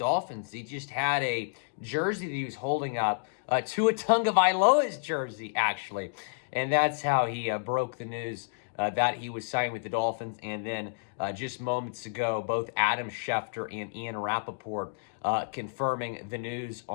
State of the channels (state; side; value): silent; right; digital silence